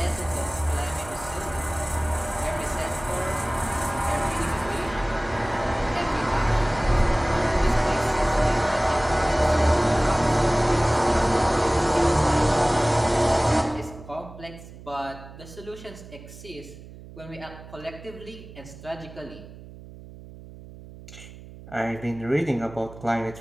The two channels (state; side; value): noise; right; hum, 17 dB below the sound